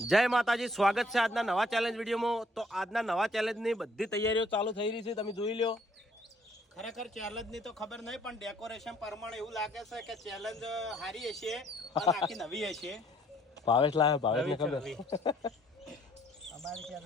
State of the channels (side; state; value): both; normal; correlation 0.63